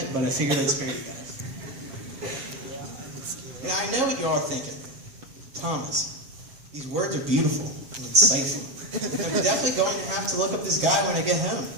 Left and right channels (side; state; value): left; late; 7.4 ms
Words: but I figured I'd spare you guys. Now, I know what you all are thinking. Thomas, these words are beautiful and insightful. I'm definitely going to have to look up this guy when I get home.